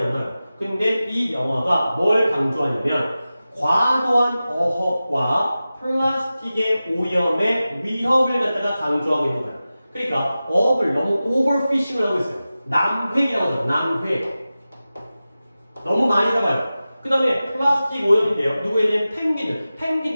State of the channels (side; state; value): both; inverted; correlation -0.95